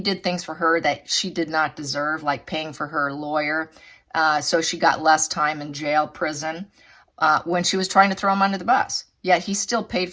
did things for her that she did not deserve, like paying for her lawyer. So she got less time in jail, prison, when she was trying to throw him under the bus. Yet he still paid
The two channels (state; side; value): identical; both; correlation 1.00